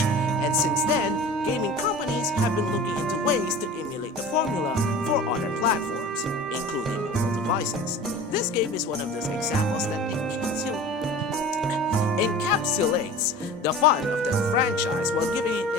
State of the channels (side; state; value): both; normal; correlation 0.38